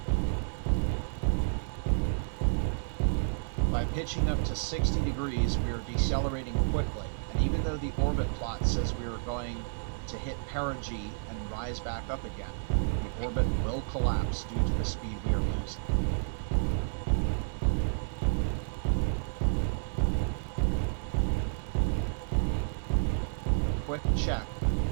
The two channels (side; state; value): left; silent; digital silence